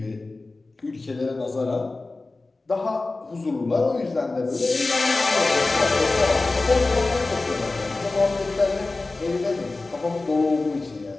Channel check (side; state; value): right; quieter; 3.4 dB